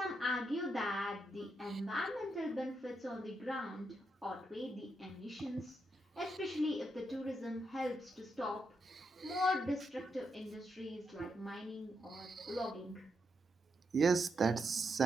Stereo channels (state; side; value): normal; both; correlation 0.82